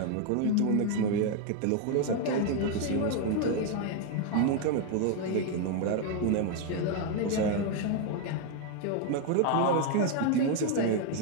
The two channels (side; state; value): both; different; correlation 0.01